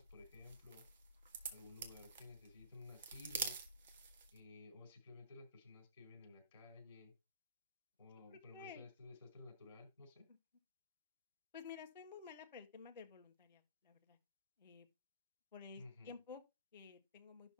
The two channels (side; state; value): both; inverted; correlation -0.49